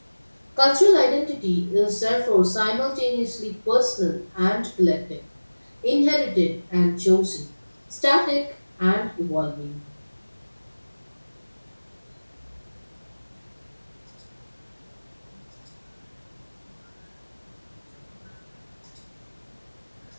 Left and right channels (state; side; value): inverted; both; correlation -1.00